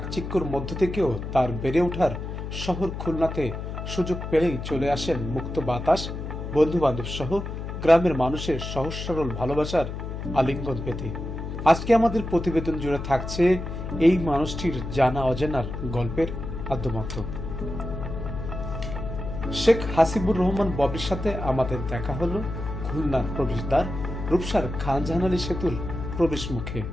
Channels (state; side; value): noise; left; hum, 6 dB below the sound